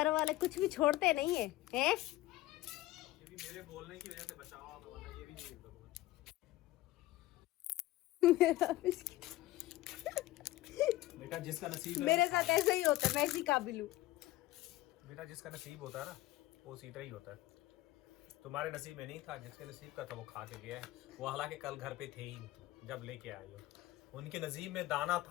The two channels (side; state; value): right; quieter; 17.0 dB